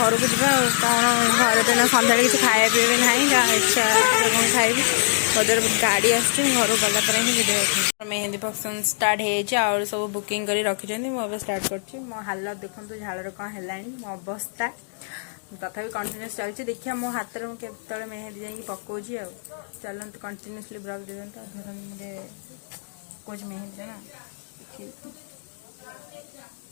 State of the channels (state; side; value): silent; right; digital silence